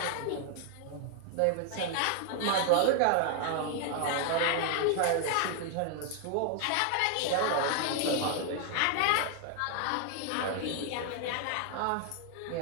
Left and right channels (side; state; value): both; different; correlation 0.00